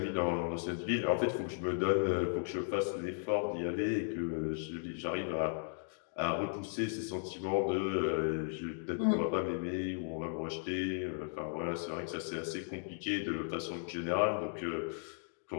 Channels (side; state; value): right; silent; digital silence